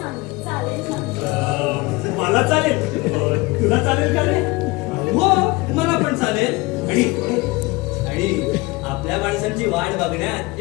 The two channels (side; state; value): right; quieter; 23.3 dB